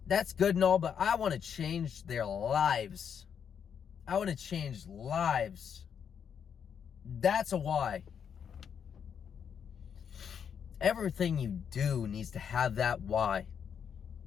good and all, but I want to change their lives. I want to change lives. That's a why. Everything you do needs to have that why.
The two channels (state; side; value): quieter; right; 7.6 dB